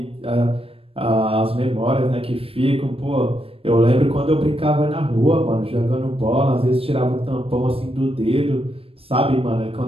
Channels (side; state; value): left; late; 0.28 ms